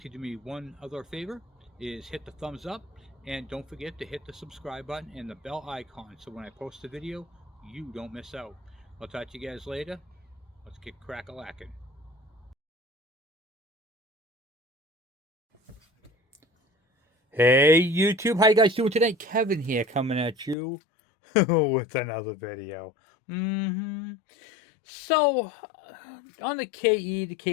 do me one other favor, is hit the thumbs up, and don't forget to hit the subscribe button and the bell icon, so when I post a video, you don't miss out. I'll talk to you guys later. Let's get crack-a-lackin'. Hey YouTube, how you guys doing today? Kevin here, coming at you with another video. So on the KE, the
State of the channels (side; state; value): right; drops out; at 20.6 s